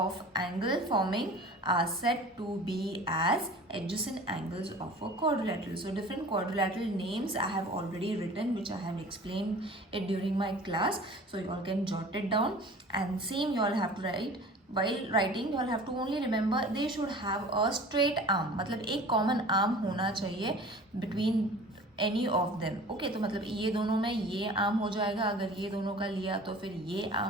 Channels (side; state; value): both; normal; correlation 0.42